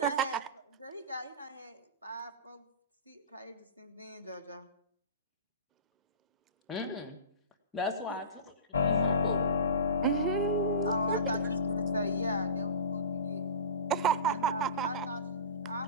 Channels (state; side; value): inverted; both; correlation -0.32